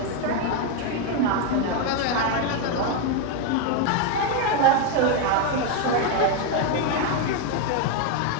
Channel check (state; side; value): different; both; correlation 0.02